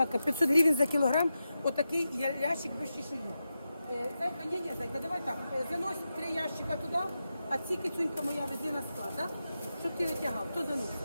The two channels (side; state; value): both; inverted; correlation -0.90